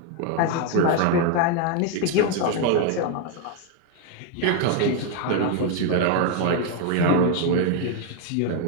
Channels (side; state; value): both; different; correlation 0.01